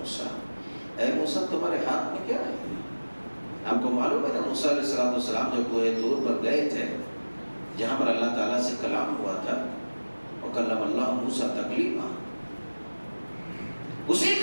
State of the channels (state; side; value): inverted; both; correlation -1.00